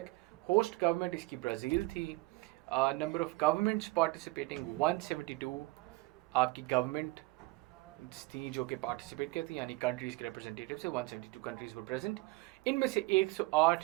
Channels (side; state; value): left; quieter; 22.0 dB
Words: होस्ट गवर्नमेंट इसकी ब्राज़ील थी। नंबर ऑफ गवर्नमेंट्स पार्टिसिपेटिंग 172 आपकी गवर्नमेंट थी जो कि पार्टिसिपेट करती, यानी कंट्रीज़ के रिप्रेजेंटेटिव से 172 कंट्रीज़ वर प्रेजेंट। इनमें से